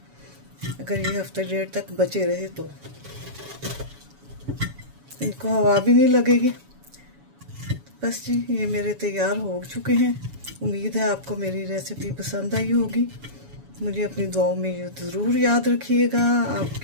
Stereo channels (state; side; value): late; left; 7.1 ms